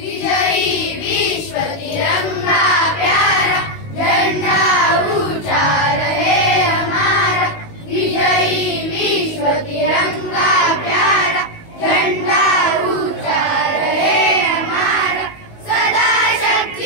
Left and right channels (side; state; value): right; late; 19 ms